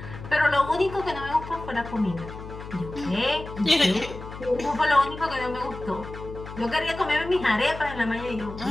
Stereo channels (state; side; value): noise; left; hum, 12 dB below the sound